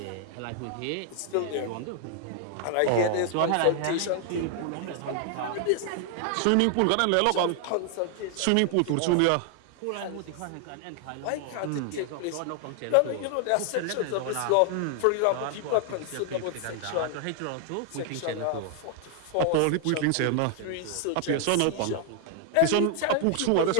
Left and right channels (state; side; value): different; both; correlation 0.00